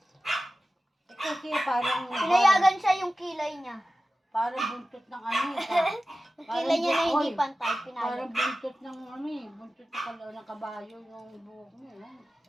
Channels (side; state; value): both; normal; correlation 0.95